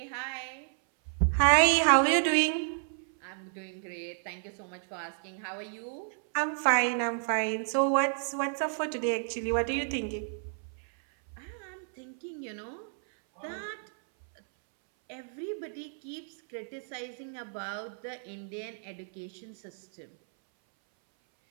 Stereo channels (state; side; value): silent; left; 57 dB below the other